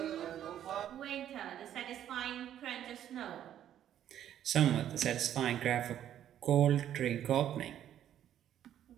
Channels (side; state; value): left; quieter; 10.9 dB